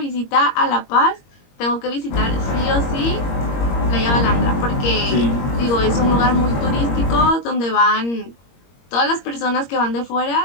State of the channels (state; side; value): late; right; 21 ms